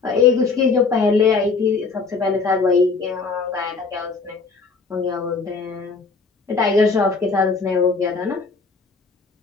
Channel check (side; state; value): right; quieter; 4.5 dB